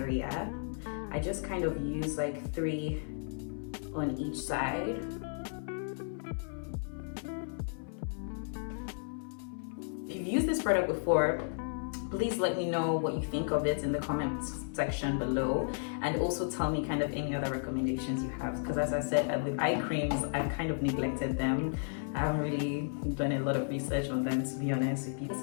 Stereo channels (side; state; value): right; silent; 55 dB below the other